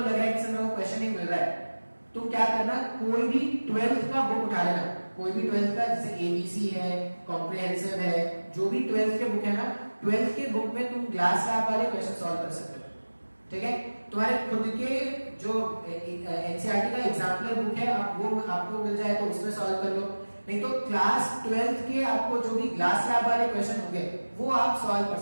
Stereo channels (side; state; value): both; inverted; correlation -1.00